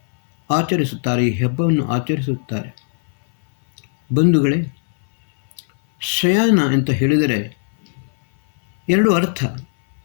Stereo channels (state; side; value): silent; right; 60 dB below the other